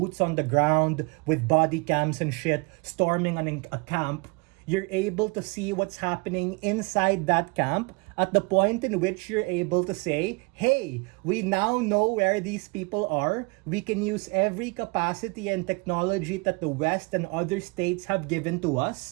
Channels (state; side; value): quieter; left; 28.9 dB